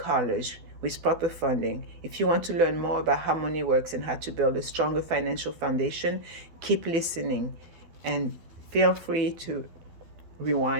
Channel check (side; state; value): left; late; 12 ms